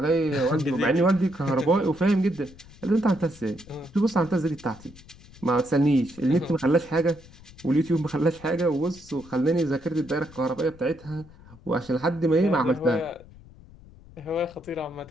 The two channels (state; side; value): noise; left; rumble, 22 dB below the sound